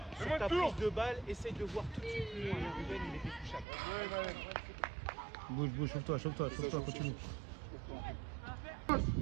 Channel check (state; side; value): drops out; left; at 3.7 s